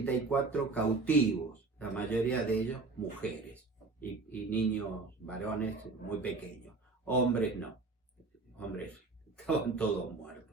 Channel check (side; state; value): left; quieter; 3.7 dB